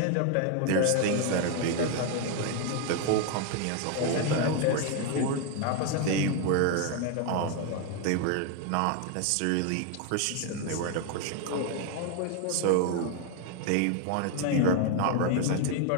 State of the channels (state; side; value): different; both; correlation 0.01